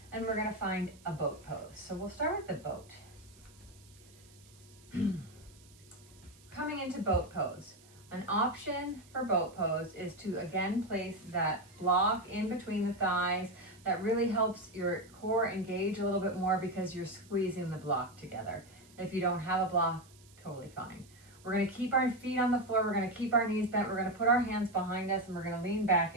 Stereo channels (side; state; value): right; noise; hiss, 26 dB below the sound